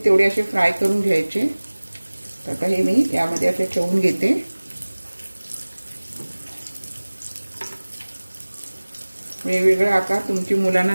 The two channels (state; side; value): inverted; both; correlation -1.00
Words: तेवढे असे फ्राय करून घ्यायचे. तर आता हे मी यामध्ये असे ठेवून घेते. वेगवेगळे आकार तुमची मुलांना